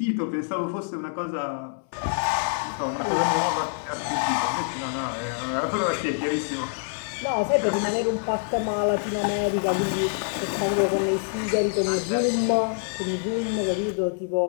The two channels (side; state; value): right; silent; 61 dB below the other